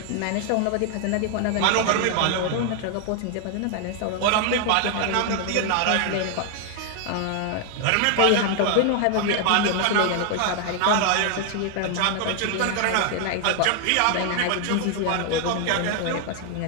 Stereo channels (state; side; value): different; both; correlation 0.00